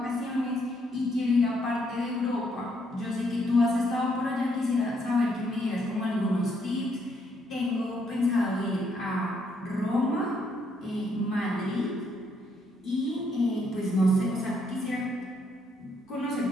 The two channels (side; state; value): both; normal; correlation 0.73